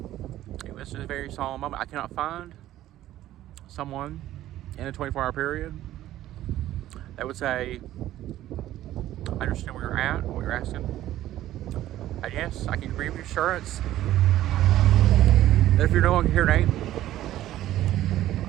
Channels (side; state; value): left; quieter; 13.7 dB